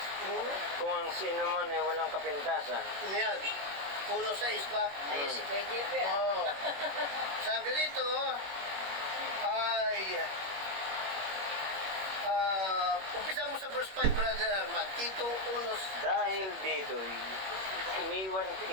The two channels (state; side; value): late; left; 21 ms